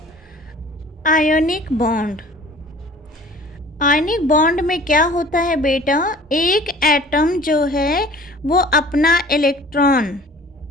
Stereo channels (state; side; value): normal; both; correlation 0.47